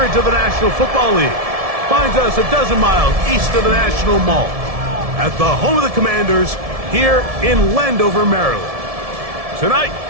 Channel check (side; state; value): left; late; 1.7 ms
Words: of the National Football League finds us a dozen miles east of the National Mall at the home of the Commanders here in Landover, Maryland. Tonight